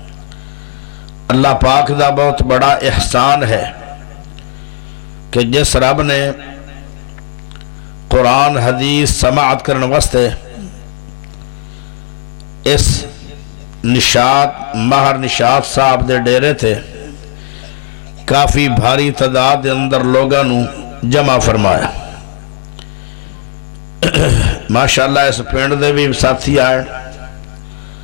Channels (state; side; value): silent; right; digital silence